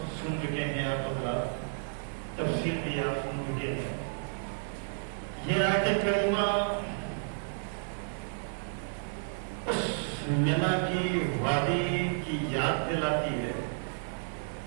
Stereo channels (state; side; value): silent; left; digital silence